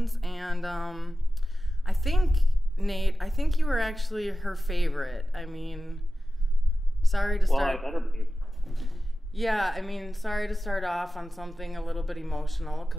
and I think, Nate, you were actually her favorite. I mean, sorry to start... Well, I better be. Yeah, I mean, sorry to start off on something a little bit emotional,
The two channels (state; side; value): normal; both; correlation 0.94